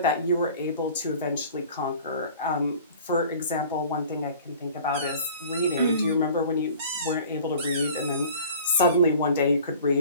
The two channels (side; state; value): both; inverted; correlation -0.46